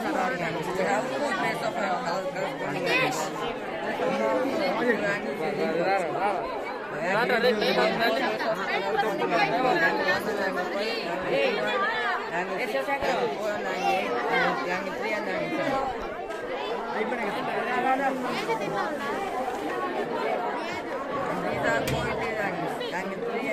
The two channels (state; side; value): identical; both; correlation 1.00